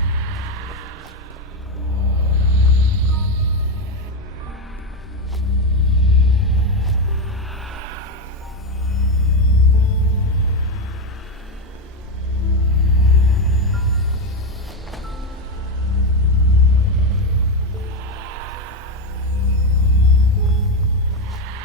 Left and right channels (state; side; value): normal; both; correlation 0.10